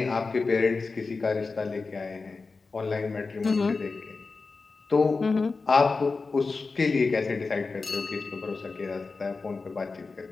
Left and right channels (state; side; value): quieter; right; 4.2 dB